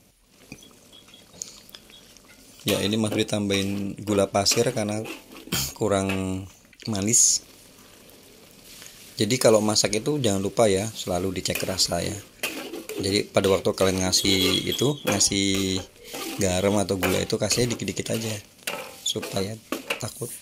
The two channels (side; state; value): both; identical; correlation 1.00